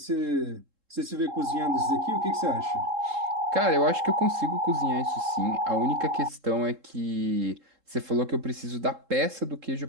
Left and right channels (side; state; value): left; late; 3.7 ms